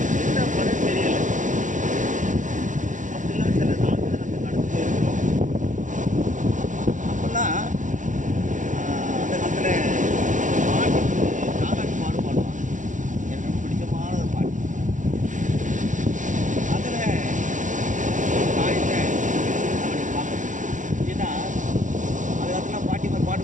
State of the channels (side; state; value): left; late; 0.37 ms